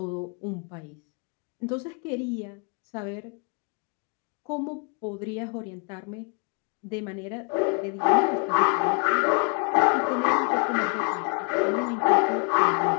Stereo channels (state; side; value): quieter; right; 35.8 dB